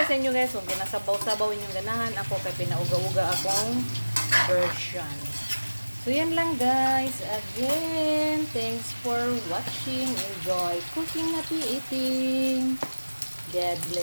sa inyo guys, kung ginasabaw-sabaw inyong ganahan, ako kay pinauga-uga akong version. So yan lang guys. Again, thanks for watching. Enjoy cooking, happy eating. God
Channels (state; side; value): inverted; both; correlation -1.00